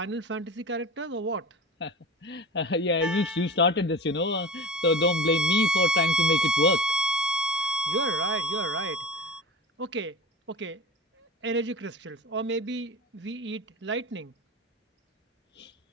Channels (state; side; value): normal; both; correlation 0.33